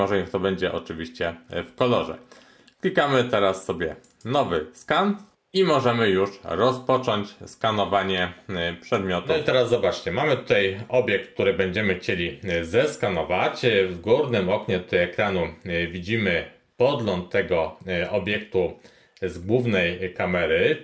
niech to będzie oczywiście w kolorze. Klikamy teraz sobie nowy skan i możemy już rozpocząć skanowanie przedmiotu. No i teraz zobaczcie, mamy tutaj obiekt, który będziemy chcieli zeskanować. W górnym oknie tutaj ekranu widzimy podgląd tego obiektu z głównej kamery,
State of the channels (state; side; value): identical; both; correlation 1.00